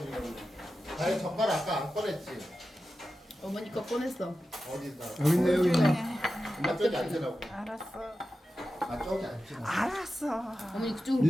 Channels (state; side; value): normal; both; correlation 0.92